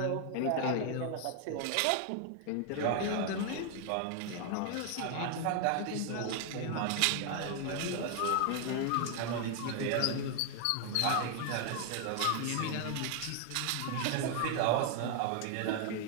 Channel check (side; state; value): both; different; correlation 0.00